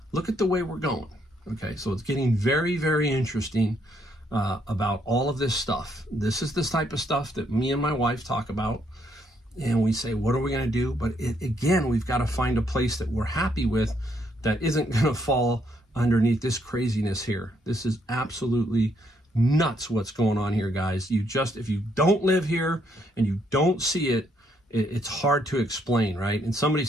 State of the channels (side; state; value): both; normal; correlation 0.73